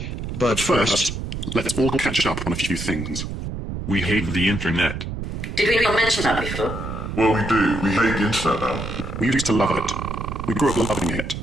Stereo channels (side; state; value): right; noise; rumble, 6 dB below the sound